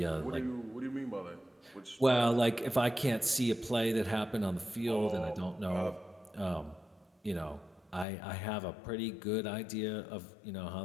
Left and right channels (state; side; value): drops out; right; at 8.1 s